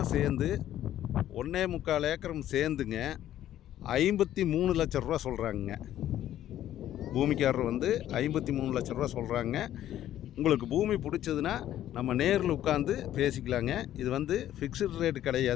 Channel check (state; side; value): quieter; right; 12.2 dB